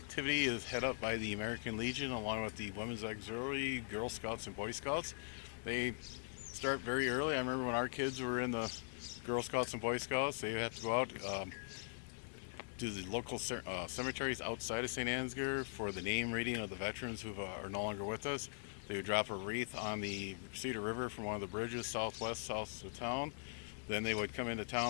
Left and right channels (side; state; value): right; silent; digital silence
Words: is head up by the American Legion along with the Women's Auxiliary, Girl Scouts, and Boy Scouts. They start very early. I remember when our kids were in the Girl Scouts and Boy Scouts, they have to go out to the local cemeteries outside of St. Ansgar for the name reading of the veterans who are no longer with us. They would drop a wreath on the Cedar River from one of the bridges south of town. Then they would come into